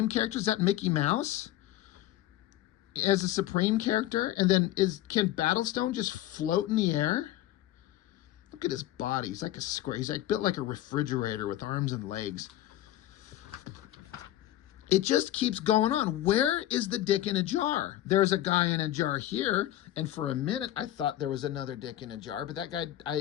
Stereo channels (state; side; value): quieter; right; 13.8 dB